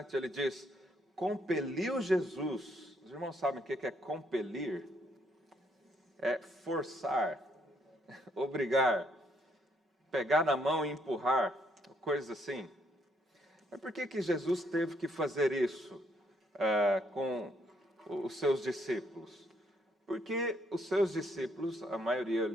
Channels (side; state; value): both; normal; correlation 0.71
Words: ele diz, compeliu Jesus. Os irmãos sabem o que é compelir? É forçar, obrigar, pegar na mão e empurrar, coisas assim. Mas por que Jesus teve que fazer isso com os seus discípulos? Porque os seus discípulos, a maioria